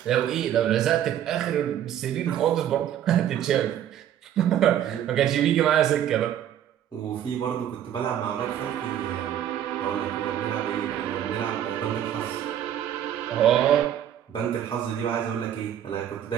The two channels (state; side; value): quieter; left; 10.6 dB